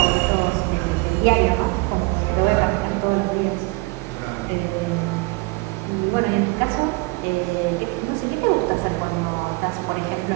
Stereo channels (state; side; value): quieter; left; 26.4 dB